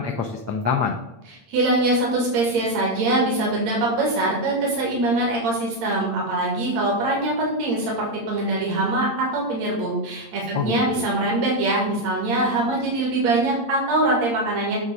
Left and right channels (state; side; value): late; left; 8.7 ms